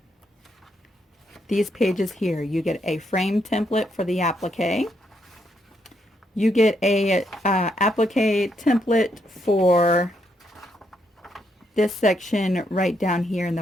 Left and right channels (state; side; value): normal; both; correlation 0.77